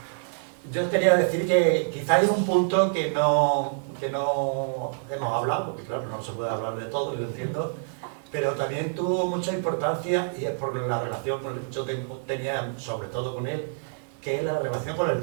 Yo quería decir que quizá hay un punto que no hemos hablado, porque claro, no se puede hablar de todo, yo entiendo, pero también tuvo mucha importancia, y es por la relación que yo tenía sobre todo con él, que es la relación con el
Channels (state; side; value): silent; left; digital silence